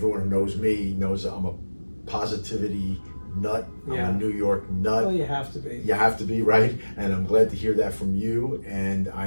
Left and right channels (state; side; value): inverted; both; correlation -1.00